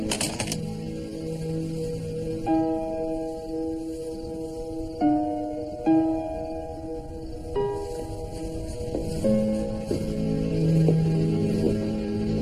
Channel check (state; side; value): identical; both; correlation 1.00